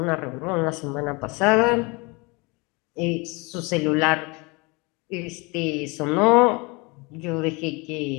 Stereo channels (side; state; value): right; quieter; 27.4 dB